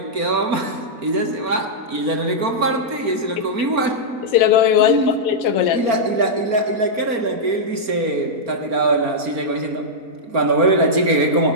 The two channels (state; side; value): late; left; 4.4 ms